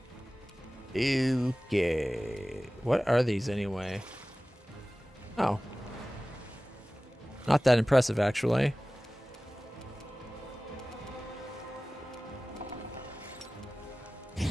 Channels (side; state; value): both; normal; correlation 0.97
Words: Okay. What are these anyway? Oh. Not that impressive, actually.